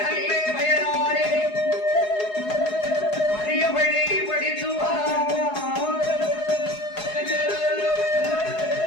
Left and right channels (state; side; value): late; right; 4.8 ms